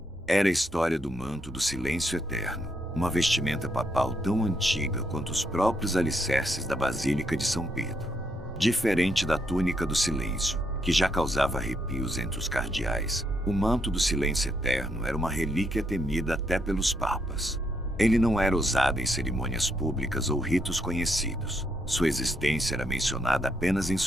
Era a história do manto do silêncio eterno, uma vestimenta papal tão antiga quanto os próprios alicerces da Basílica de São Pedro. Diferente da túnica do silêncio, que já causava arrepios entre os cardeais, o manto do silêncio eterno era uma relíquia temida até pelos papas. Ele não era usado em cerimônias públicas ou ritos conhecidos. Sua existência era mencionada apenas em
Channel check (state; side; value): normal; both; correlation 0.77